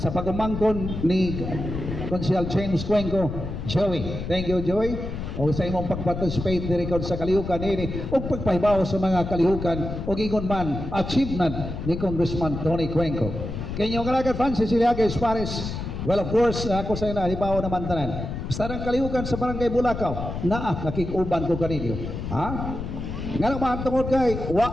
pagumangkon ni Konsihal James Cuenco, Joey, thank you Joey. O sa imong pag-participate diri kon sa kalihukan ini o pagpahibaw sa mga kalihukan o gingon man achievement ni Congressman Tony Cuenco. Kanyo kalagad Francis Iliaga Espares. Well, of course, ako sa ina hibaw naman tanan. Basta ang kalihukan sa Barangay Bulacau, nakikuban ko kaninyo. Ha? Nga naman tungod kay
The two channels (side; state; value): left; noise; rumble, 6 dB below the sound